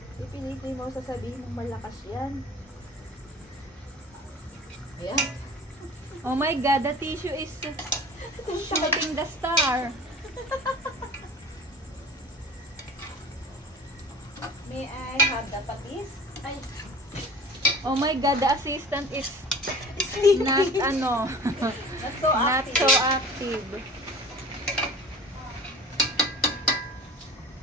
Pipilitin mo sasabihin mong malakas yan. Ayan. Oh my god, the tissue is shooting the star. May I have the patis? Ay, Oh my god, the assistant is not ano, Not so not active. so active.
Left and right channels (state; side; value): normal; both; correlation 0.40